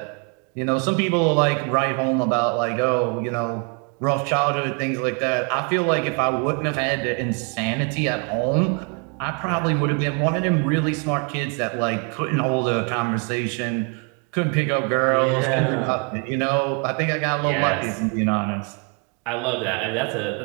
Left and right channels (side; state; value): left; quieter; 35.1 dB